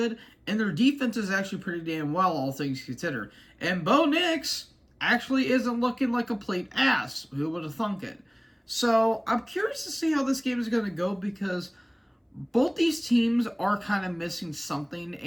and their defense is actually pretty damn well, all things considered. And Bo Nix actually isn't looking like a complete ass. Who would have thunk it? So I'm curious to see how this game is going to go, because both these teams are kind of missing something,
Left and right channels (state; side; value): identical; both; correlation 1.00